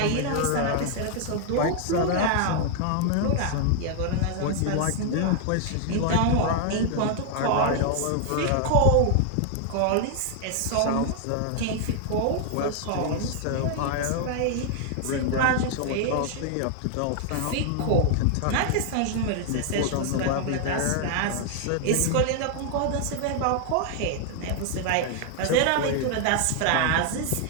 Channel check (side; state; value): both; different; correlation 0.00